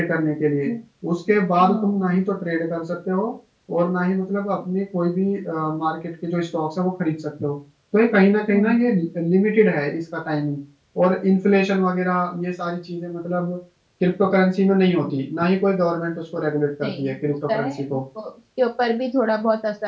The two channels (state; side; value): identical; both; correlation 1.00